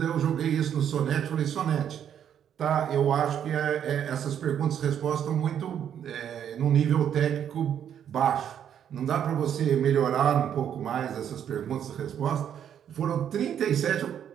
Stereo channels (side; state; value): left; quieter; 9.2 dB